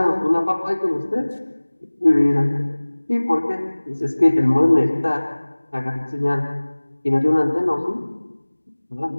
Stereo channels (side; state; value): both; inverted; correlation -1.00